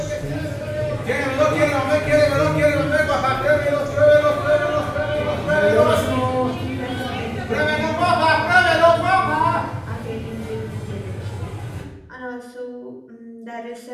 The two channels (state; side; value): identical; both; correlation 1.00